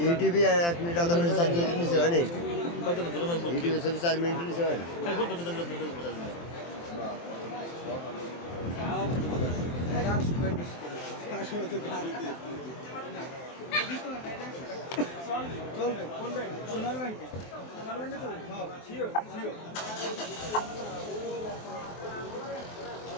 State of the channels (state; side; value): late; right; 23 ms